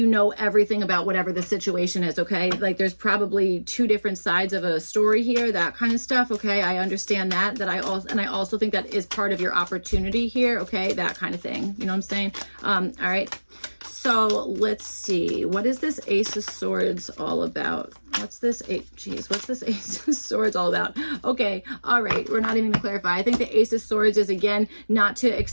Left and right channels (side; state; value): both; inverted; correlation -1.00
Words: know everything about whatever the situation is. Okay. Like there's probably two different sides of a story here, that kind of stuff. Okay. I understand that I also think that is part of your opportunity here. Okay. That kind of thing. You know what I'm saying? All right. So let's see. What is this Ace of Swords all about? What's this Ace of Swords all about? Okay. All right. We're not even gonna clarify. I think the Ace of Swords is, again, not to